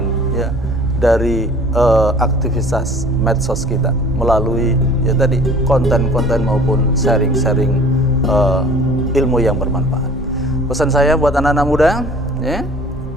ya dari aktivitas medsos kita melalui ya tadi konten-konten maupun sharing-sharing ilmu yang bermanfaat. Pesan saya buat anak-anak muda ya,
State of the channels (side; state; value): both; normal; correlation 0.48